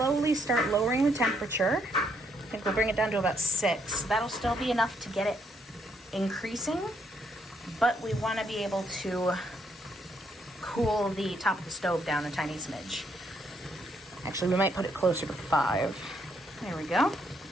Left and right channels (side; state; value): both; normal; correlation 0.73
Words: start lowering the temperature. I think we'll bring it down to about 6. That'll still be enough to get it increasing, but we want to be able to cool the top of the stove down a tiny smidge. Actually, we might put it closer to 5. There we go.